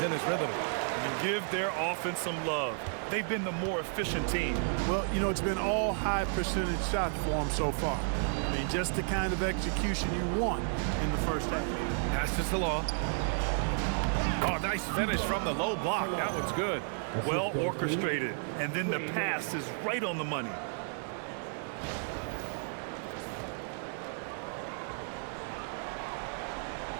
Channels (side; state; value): left; silent; 56 dB below the other